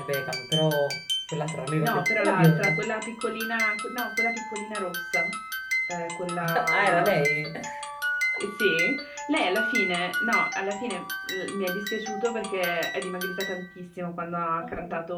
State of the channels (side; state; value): both; identical; correlation 1.00